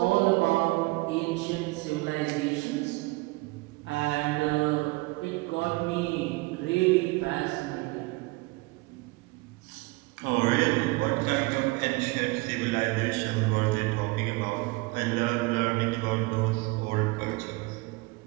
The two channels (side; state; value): left; quieter; 24.0 dB